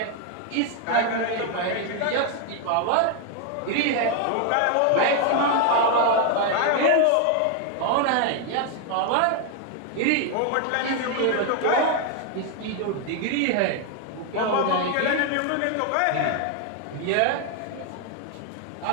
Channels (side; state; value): both; different; correlation 0.01